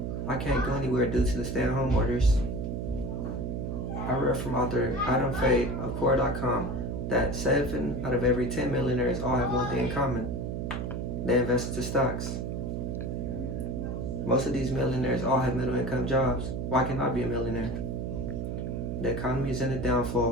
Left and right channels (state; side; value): noise; right; hum, 3 dB below the sound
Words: I can't go anywhere due to the stay-at-home orders. I read from author Adam Fay of Core.com that 7 out of every 10 millionaires all have one thing in common. They invest into stocks. Most of these millionaires all have middle income jobs. Why can't I be a millionaire? The economy is in a